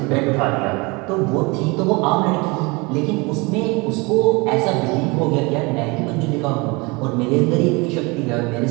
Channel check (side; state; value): left; quieter; 26.8 dB